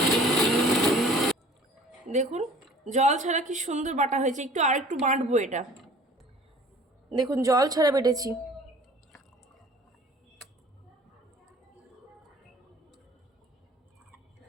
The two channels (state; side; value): normal; both; correlation 0.48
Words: দেখুন জল ছাড়া কি সুন্দর বাটা হয়েছে। আর একটু বাটবো এটা। দেখুন জল ছাড়া বেটেছি।